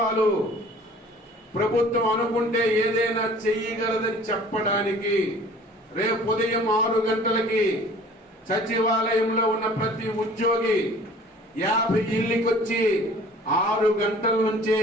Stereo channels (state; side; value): normal; both; correlation 0.49